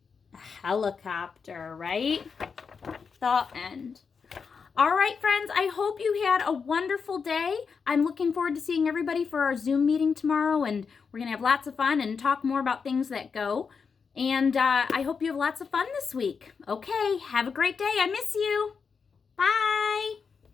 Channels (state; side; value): quieter; right; 5.7 dB